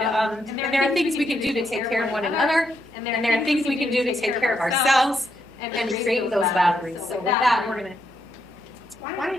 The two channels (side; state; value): right; noise; hum, 26 dB below the sound